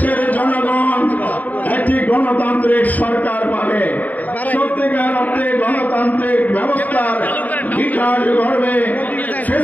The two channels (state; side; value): late; right; 0.078 ms